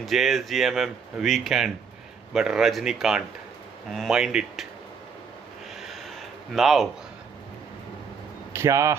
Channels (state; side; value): quieter; left; 5.9 dB